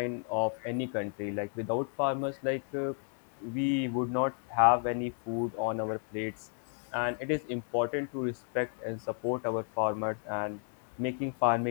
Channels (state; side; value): silent; right; 56 dB below the other